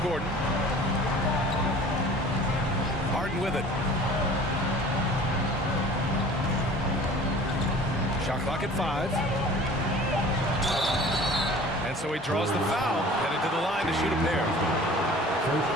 Gordon. Harden with it. Shot clock at 5. And so he draws the foul, headed to the line to shoot a pair.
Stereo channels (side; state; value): both; normal; correlation 0.45